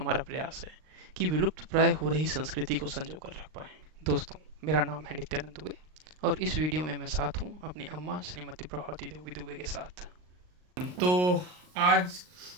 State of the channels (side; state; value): left; late; 39 ms